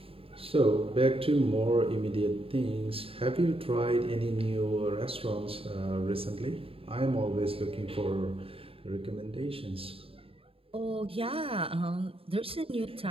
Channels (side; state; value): left; late; 0.27 ms